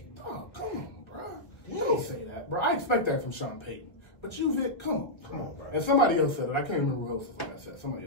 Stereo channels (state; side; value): late; right; 1.3 ms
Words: Oh, come on, bro. Don't say that, bro. I expect that from Sean Payton. But you, Vic, come on, bro. And somebody else said it. I can't remember who else was on that set. Somebody